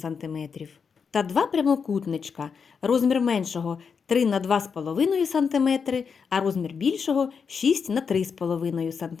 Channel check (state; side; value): quieter; right; 6.0 dB